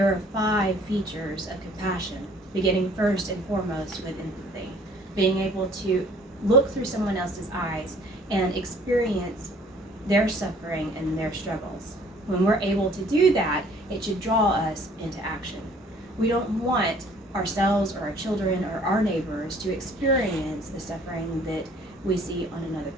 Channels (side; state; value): both; normal; correlation 0.56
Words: are 5 features of compassion, beginning first and foremost with empathy, being able to look through someone else's eyes and experience their suffering and their struggles. When we're able to do that, it should draw us into action. We don't want ourselves or our children or our neighbors to experience the suffering that we see on another